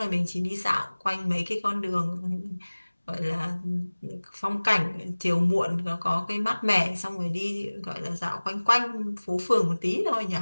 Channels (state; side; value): inverted; both; correlation -1.00